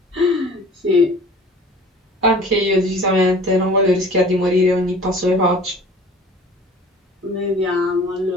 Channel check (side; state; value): both; normal; correlation 0.46